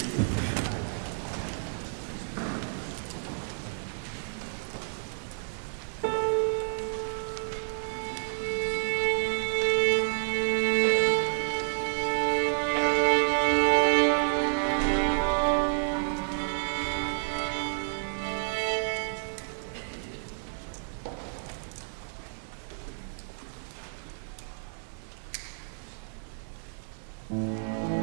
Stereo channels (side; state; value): left; silent; digital silence